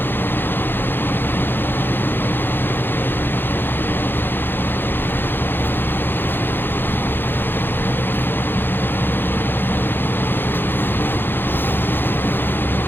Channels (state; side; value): late; right; 0.099 ms